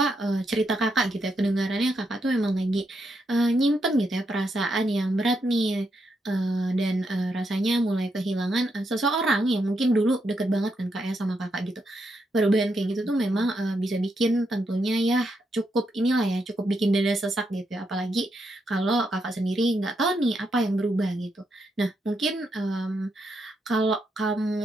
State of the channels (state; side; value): normal; both; correlation 0.81